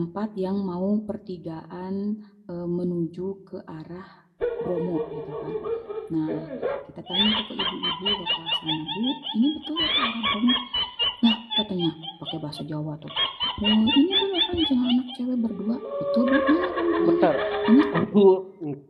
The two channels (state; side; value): identical; both; correlation 1.00